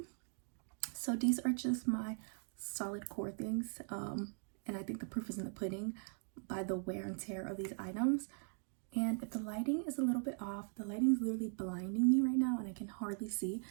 So these are just my solid core things, and I think the proof is in the pudding by the wear and tear of these items. And if the lighting is a little bit off, the lighting is literally blinding me right now and I can hardly see.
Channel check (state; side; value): silent; left; 51 dB below the other